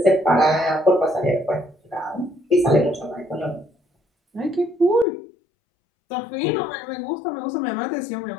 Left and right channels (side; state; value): right; drops out; at 5.1 s